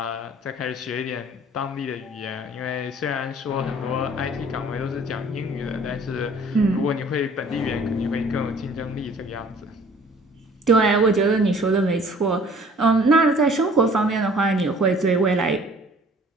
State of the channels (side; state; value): both; normal; correlation 0.53